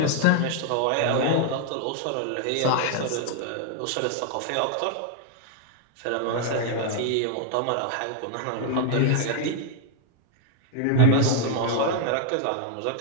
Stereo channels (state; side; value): different; both; correlation 0.00